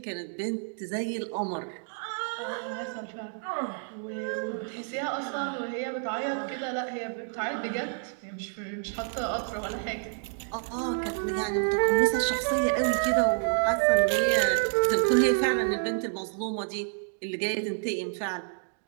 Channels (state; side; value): silent; left; 59 dB below the other